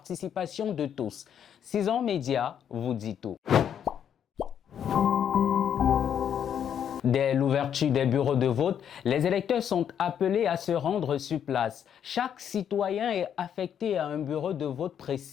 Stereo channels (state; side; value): quieter; right; 8.8 dB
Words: de tous. 6 ans Média vous dit tout. Dès l'ouverture des bureaux de vote, les électeurs sont appelés à se rendre sur place. Chaque citoyen est affecté à un bureau de vote